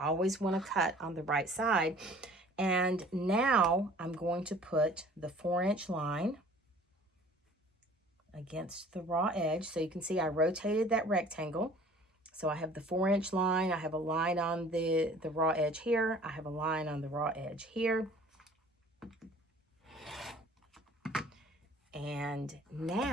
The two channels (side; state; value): both; normal; correlation 0.50